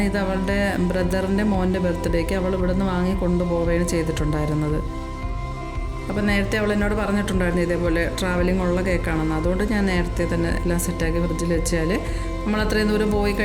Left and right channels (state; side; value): identical; both; correlation 1.00